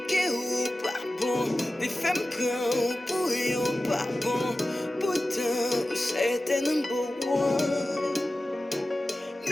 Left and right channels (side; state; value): both; normal; correlation 0.95